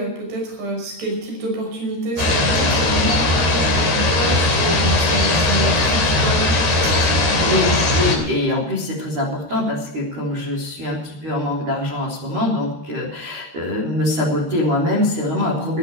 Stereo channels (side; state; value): left; late; 13 ms